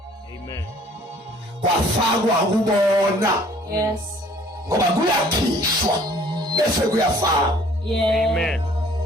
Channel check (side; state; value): both; normal; correlation 0.56